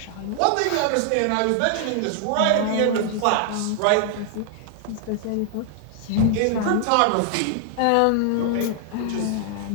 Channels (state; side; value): different; both; correlation 0.00